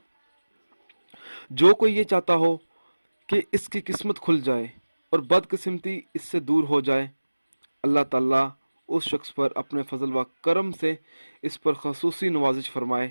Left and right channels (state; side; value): inverted; both; correlation -1.00